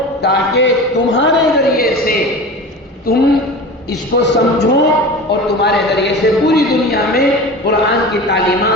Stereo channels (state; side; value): normal; both; correlation 0.33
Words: تاکہ تمہارے ذریعے سے تم اس کو سمجھو اور تمہارے ذریعے سے پوری دنیا میں قرآن کی